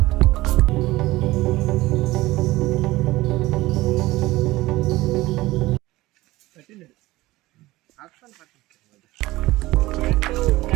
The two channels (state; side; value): quieter; left; 18.5 dB